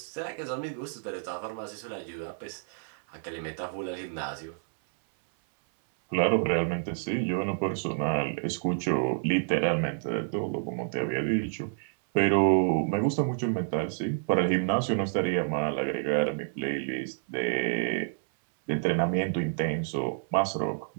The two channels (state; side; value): silent; left; 59 dB below the other